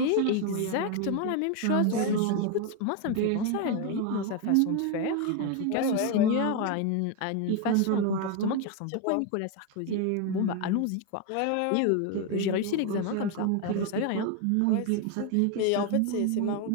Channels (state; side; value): different; both; correlation 0.01